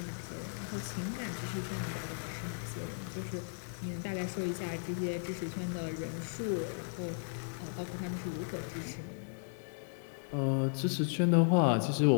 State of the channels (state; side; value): silent; right; digital silence